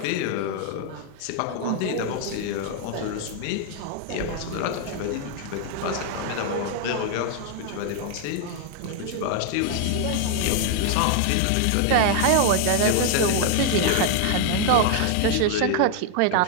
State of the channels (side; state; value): both; different; correlation 0.00